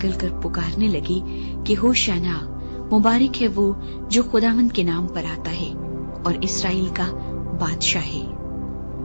पुकारने लगी कि होशाना, मुबारक है वो जो खुदावंद के नाम पर आता है और इस्राएल का बादशाह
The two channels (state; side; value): inverted; both; correlation -1.00